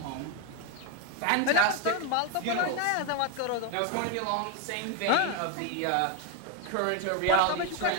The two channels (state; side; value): different; both; correlation 0.02